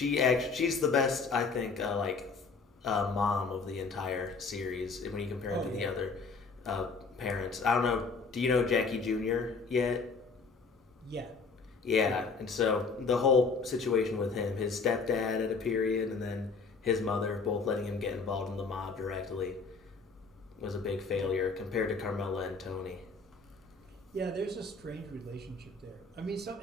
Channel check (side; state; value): right; quieter; 4.5 dB